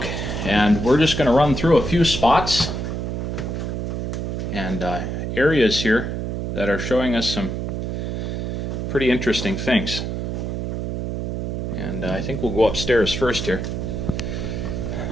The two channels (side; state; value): right; noise; hum, 2 dB below the sound